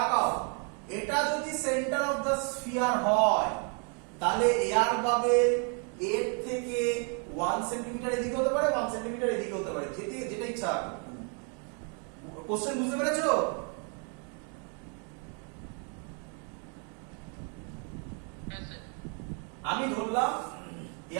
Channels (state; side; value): quieter; left; 38.8 dB